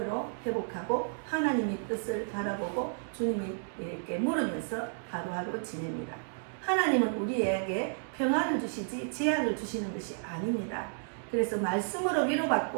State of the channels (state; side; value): silent; left; digital silence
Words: 회복하고 하나님의 뜻을 바라보고 주님에게 물으면서 하루하루 지냅니다. 하나님은 우리에게 평안을 주시지 재앙을 주시는 것이 아닙니다. 그래서 말씀으로